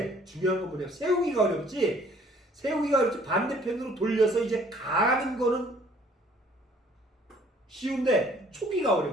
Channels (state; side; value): normal; both; correlation 0.58